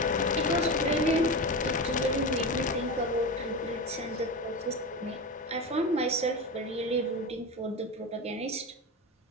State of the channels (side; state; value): both; normal; correlation 0.22